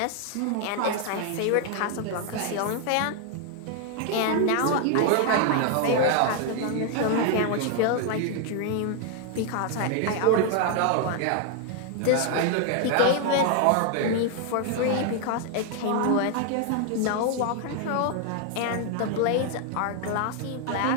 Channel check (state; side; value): different; both; correlation 0.00